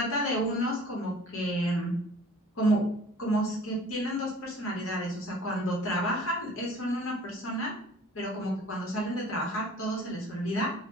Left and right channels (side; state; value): both; normal; correlation 0.48